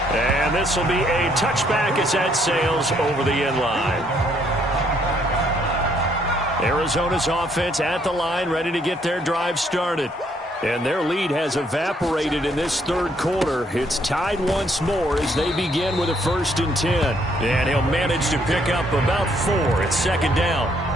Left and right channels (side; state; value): both; normal; correlation 0.69